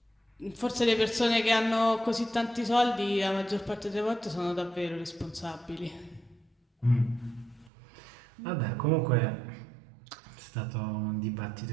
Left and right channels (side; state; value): left; drops out; at 7.7 s